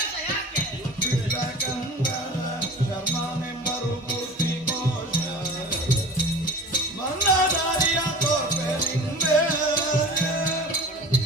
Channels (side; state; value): both; normal; correlation 0.38